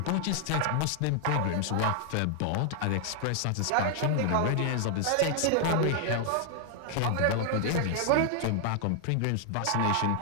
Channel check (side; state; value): both; different; correlation 0.00